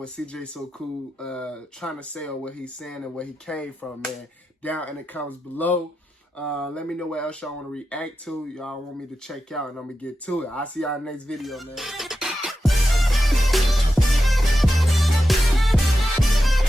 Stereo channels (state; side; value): normal; both; correlation 0.90